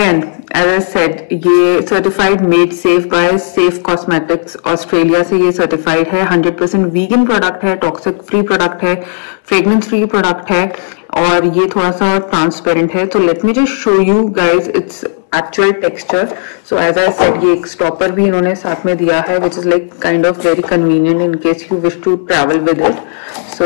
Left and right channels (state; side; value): silent; right; digital silence